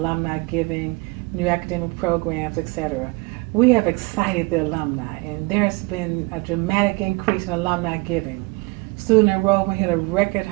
giving, new academic programs, etc. We have excited the alumni, and there's been a dramatic increase in alumni giving. Student enrollment hit a record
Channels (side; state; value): left; quieter; 25.9 dB